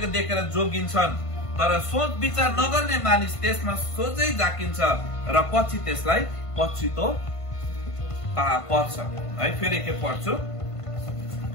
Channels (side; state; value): right; late; 1.5 ms